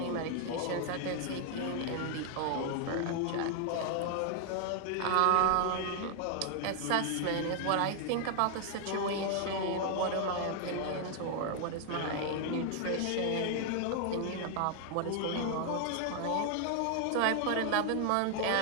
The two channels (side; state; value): both; different; correlation 0.00